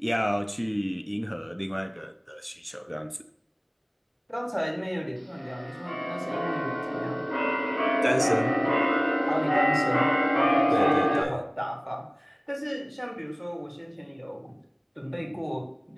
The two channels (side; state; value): both; identical; correlation 1.00